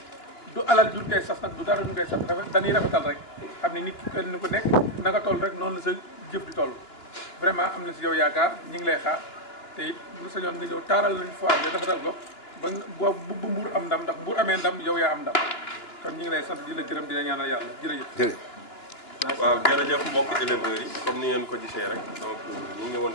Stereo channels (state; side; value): late; right; 2.9 ms